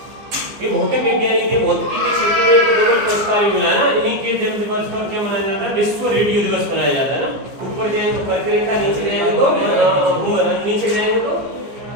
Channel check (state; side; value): late; left; 15 ms